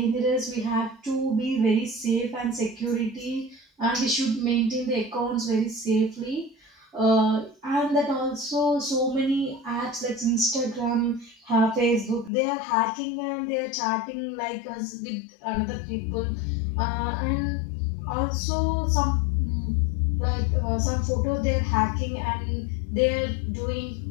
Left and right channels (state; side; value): drops out; right; at 12.3 s